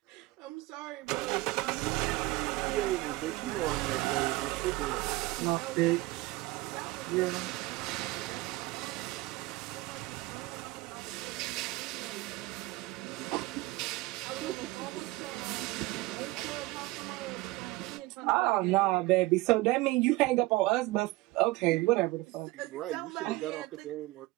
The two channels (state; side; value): quieter; left; 20.3 dB